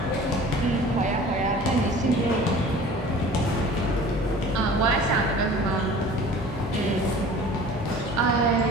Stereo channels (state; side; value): normal; both; correlation 0.44